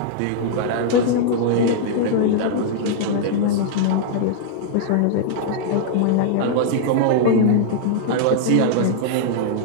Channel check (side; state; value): both; different; correlation -0.01